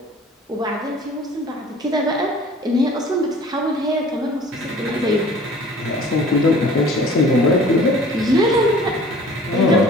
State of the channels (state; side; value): normal; both; correlation 0.48